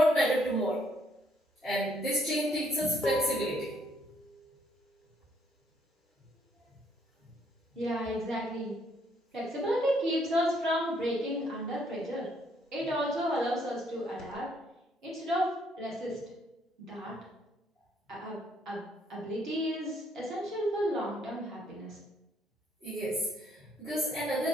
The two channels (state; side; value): normal; both; correlation 0.69